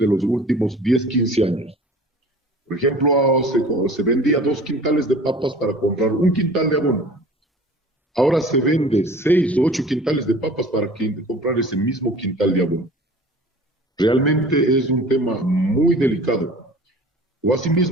los últimos 10, 15 años. Por ejemplo, se vendía 2 quintales de papas para comprar un quintal de abono. Ahora se vende 6 o 8 quintales de papas para comprar ese mismo quintal de abono. Realmente es un tema muy delicado. O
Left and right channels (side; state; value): both; normal; correlation 0.44